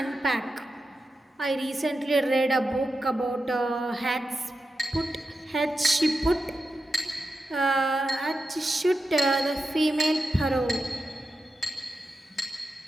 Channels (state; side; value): normal; both; correlation 0.89